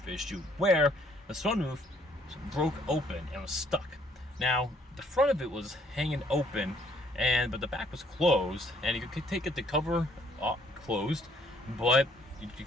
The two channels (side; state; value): both; normal; correlation 0.64